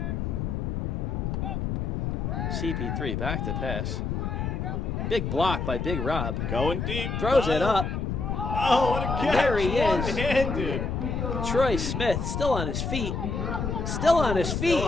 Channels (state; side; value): noise; left; rumble, 2 dB below the sound